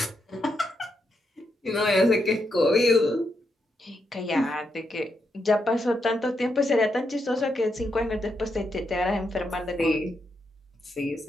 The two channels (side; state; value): both; normal; correlation 0.81